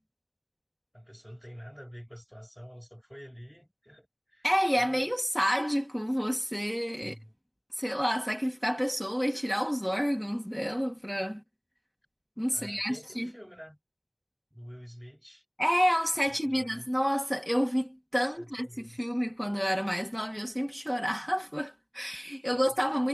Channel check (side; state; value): both; identical; correlation 1.00